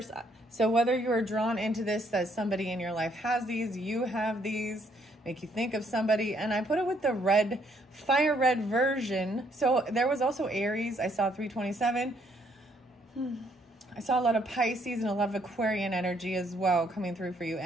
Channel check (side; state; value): both; normal; correlation 0.69